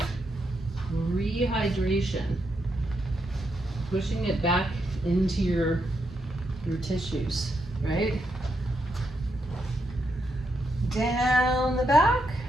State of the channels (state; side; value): normal; both; correlation 0.81